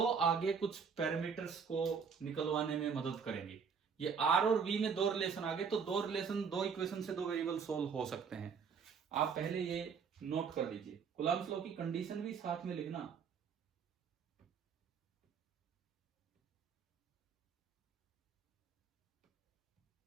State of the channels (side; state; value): left; quieter; 6.2 dB